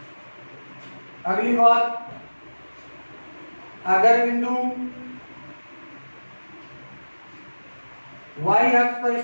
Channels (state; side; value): inverted; both; correlation -1.00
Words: अगली बात, अगर बिंदु y अक्ष पर